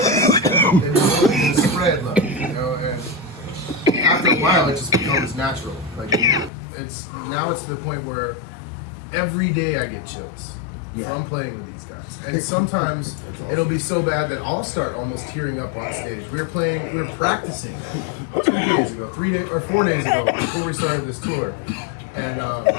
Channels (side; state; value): right; drops out; at 6.5 s